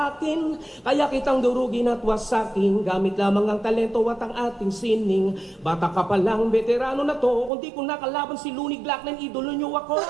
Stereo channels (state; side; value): drops out; left; at 7.5 s